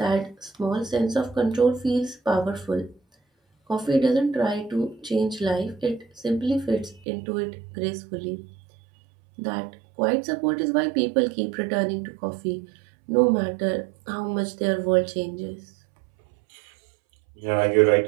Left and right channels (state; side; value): drops out; left; at 7.1 s